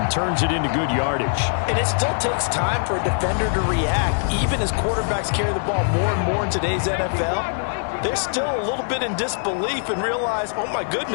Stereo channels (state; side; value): silent; right; digital silence